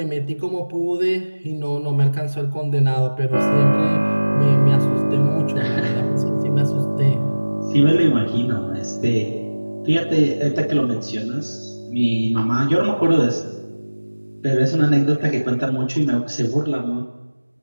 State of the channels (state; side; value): inverted; both; correlation -1.00